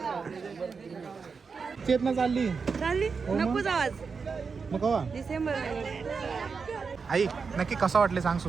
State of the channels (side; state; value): left; quieter; 5.2 dB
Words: चेतना चालली नकोच आवाज. मग कवा डिसेंबर आई नक्की कसं वाटले सांग